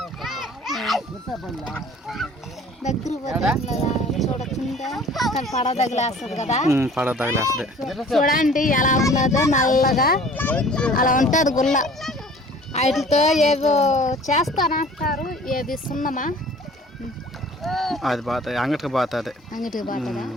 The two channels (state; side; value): normal; both; correlation 0.48